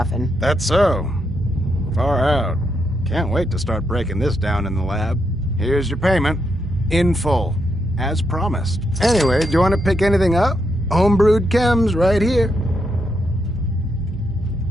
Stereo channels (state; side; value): normal; both; correlation 0.80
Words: That's so. Far out. Can't wait to start breaking this down in the lab. Here's your payment. In full. As promised. Anyway, do you want to pick anything up? Homebrewed chems right here.